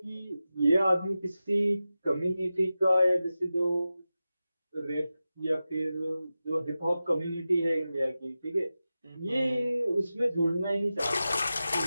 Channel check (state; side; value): inverted; both; correlation -0.93